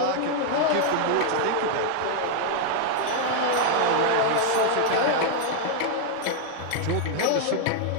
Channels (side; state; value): both; different; correlation 0.00